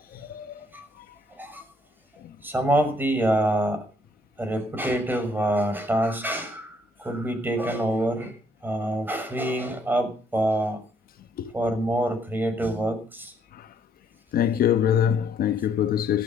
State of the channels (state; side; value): normal; both; correlation 0.67